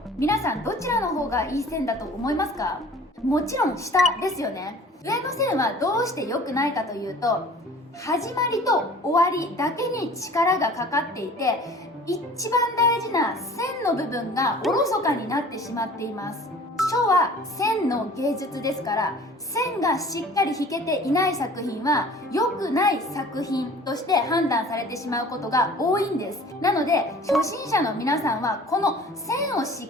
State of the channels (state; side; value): normal; both; correlation 0.47